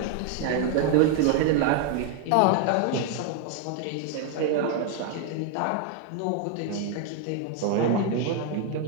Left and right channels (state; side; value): different; both; correlation 0.01